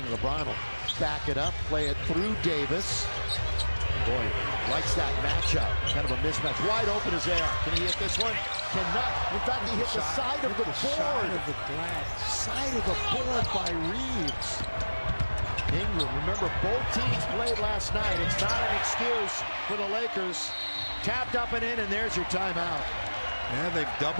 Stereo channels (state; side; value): inverted; both; correlation -1.00